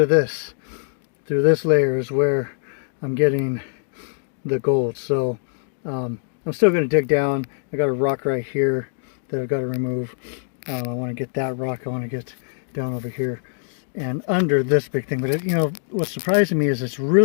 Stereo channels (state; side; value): silent; right; digital silence